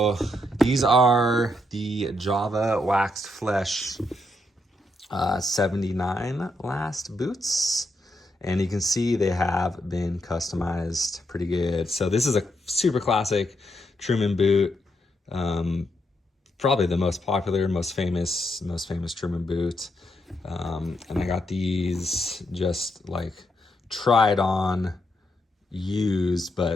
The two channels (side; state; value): both; normal; correlation 0.79